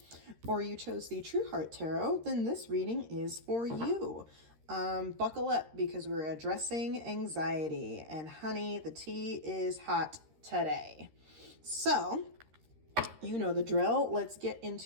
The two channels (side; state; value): left; late; 13 ms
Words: or you chose the True Heart Tarot, then this reading is for you. Buckle up because we're addressing anxiety, and honey, the tea is hot today. So, you know the drill. Let's get